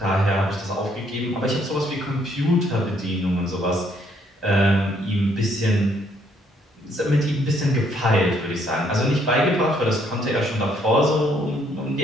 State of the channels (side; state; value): both; normal; correlation 0.68